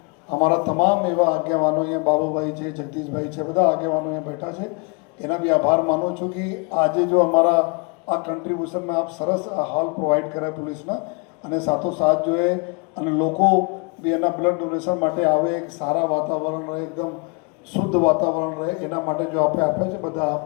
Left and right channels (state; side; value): quieter; right; 32.5 dB